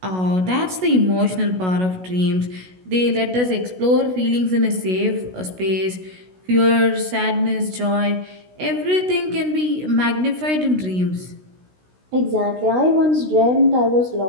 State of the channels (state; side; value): late; left; 16 ms